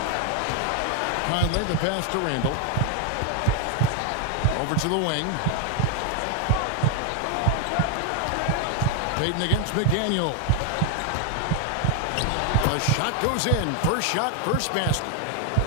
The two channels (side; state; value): both; different; correlation 0.01